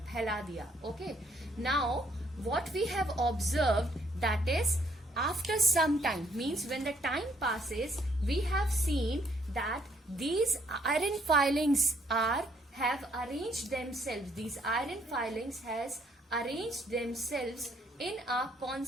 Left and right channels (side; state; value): both; normal; correlation 0.68